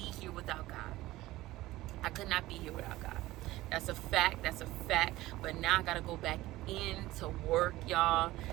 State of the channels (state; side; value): quieter; left; 17.4 dB